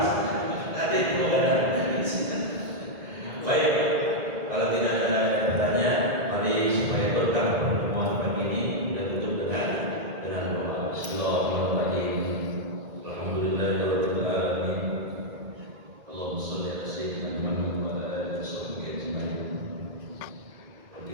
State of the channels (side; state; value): left; late; 2.0 ms